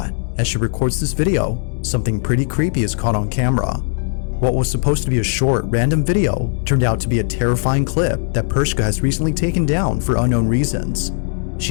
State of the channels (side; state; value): right; silent; digital silence